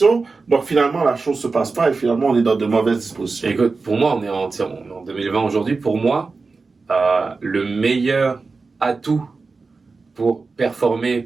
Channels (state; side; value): quieter; left; 4.2 dB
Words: donc finalement, la chose se passe pas et finalement, on est dans de mauvaises dispositions. Écoute, pour moi, on est en 2020 aujourd'hui. Pour moi, le meilleur atout pour performer,